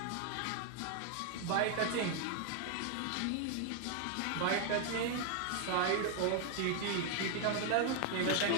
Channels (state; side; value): different; both; correlation 0.00